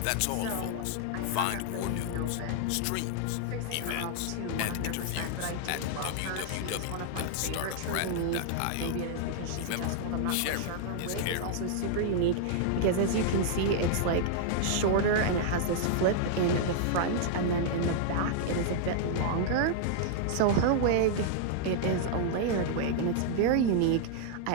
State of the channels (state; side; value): different; both; correlation -0.01